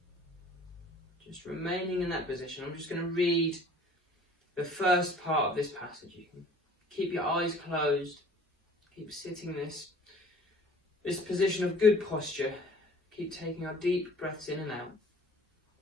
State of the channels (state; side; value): normal; both; correlation 0.50